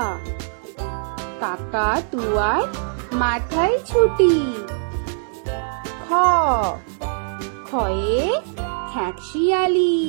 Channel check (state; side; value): silent; left; digital silence